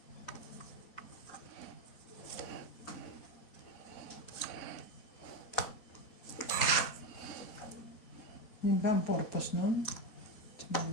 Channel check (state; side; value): late; right; 4.0 ms